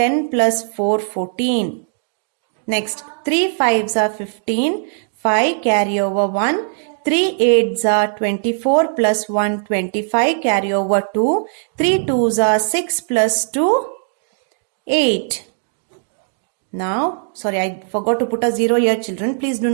plus 4, 14. Next, 3 5s are 15. 5 carry over 1. 3 8s are 24 plus 1, 25. Carry over 2. 3 2s are 6 plus 2, 8. Now, sorry, I forgot to put a 0 here, children. Please do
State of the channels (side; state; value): left; silent; digital silence